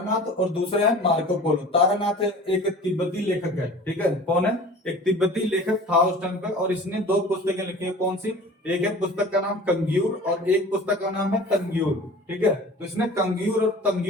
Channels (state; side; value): normal; both; correlation 0.42